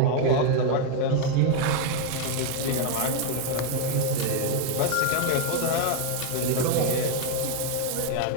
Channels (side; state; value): both; different; correlation 0.01